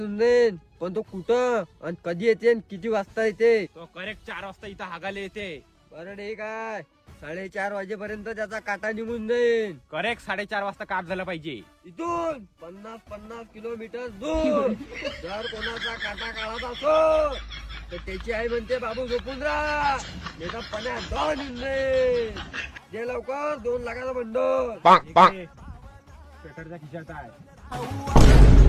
जाईल. पण तो कुठं आणि कधी येते आणि किती वाजता येते? तो करेक्ट 4 वाजता इथं हागाले येते. बरं ठीक आहे, 4:30 वाजेपर्यंत त्याचा काटा निघून जाईल. करेक्ट 4:30 वाजता काम झालं पाहिजे. इथून 50 किलोमीटर दूर जर कोणाचा काटा काढायचा असो तर त्याची आई म्हणते बाबू झोपून राहा, नाही तर पाण्यात जाऊन येऊन जाईल. जे लवकर 2 लाखाचा बंडल. स्वेटरच्या खिशात आहे.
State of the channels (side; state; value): both; identical; correlation 1.00